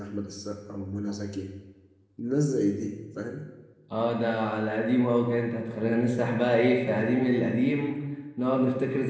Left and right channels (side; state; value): both; identical; correlation 1.00